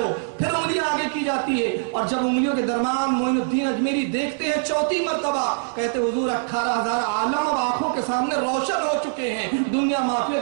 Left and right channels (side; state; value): left; silent; 63 dB below the other